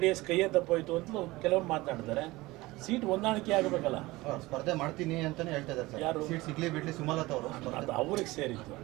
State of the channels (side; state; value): left; quieter; 20.3 dB